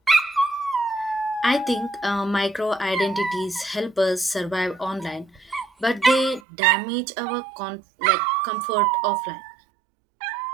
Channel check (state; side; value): drops out; left; at 6.4 s